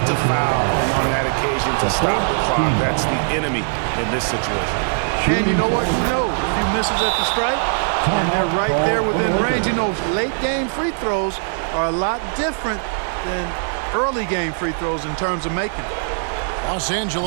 to foul on that occasion to stop the clock. That's the enemy in this situation. And you know what? He knows if he misses at the stripe, and they're right there within range. You know, late game free throws are a lot different than early game free throws in terms of making it. Los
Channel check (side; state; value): left; silent; 65 dB below the other